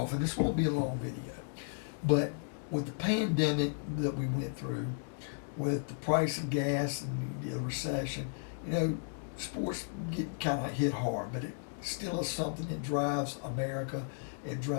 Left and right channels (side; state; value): right; silent; digital silence